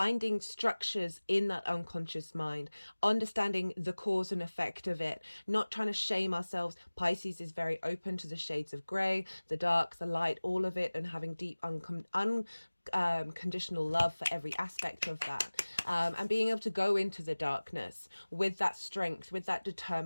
structures in that unconscious mind, understanding the cause and effect of it, not trying to shame ourselves. Pisces is very open to the shades of grey, the dark, the light, all of it, and having deep unconditional love for every aspect of that, and being able to go into the darkness with that strength, with that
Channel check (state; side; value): inverted; both; correlation -1.00